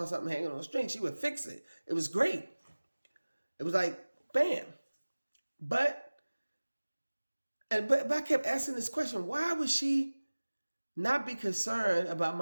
something hanging on a string, she would fix it. It was great. It was like, bam. But I kept asking this question, why would she not be concerned about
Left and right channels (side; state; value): both; inverted; correlation -1.00